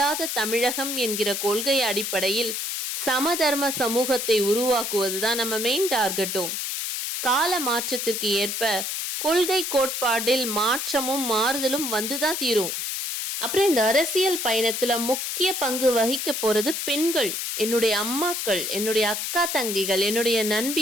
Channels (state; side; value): noise; left; hiss, 3 dB below the sound